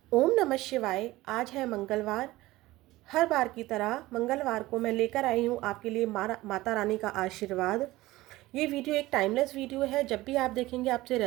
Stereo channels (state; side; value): quieter; left; 18.1 dB